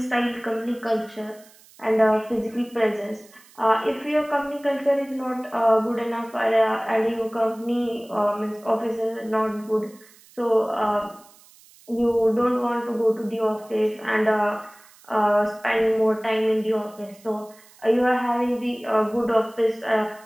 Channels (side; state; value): right; noise; hiss, 26 dB below the sound